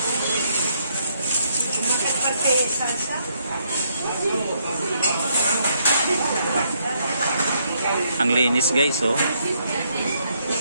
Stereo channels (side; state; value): both; inverted; correlation -0.73